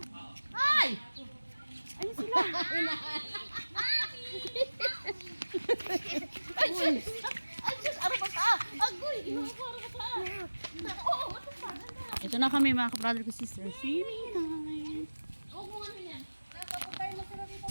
Ay! Ayun sila. Ay, Diyos! Ay, Diyos! Araw ba ka? Agoy! Inuha ko, araw ba ka? Oo, matapad na. Ito na kami mga ka-brother ko sister. Swimming time. Huwag mo ano yan. Nakapag tayo masarap dito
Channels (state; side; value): inverted; both; correlation -1.00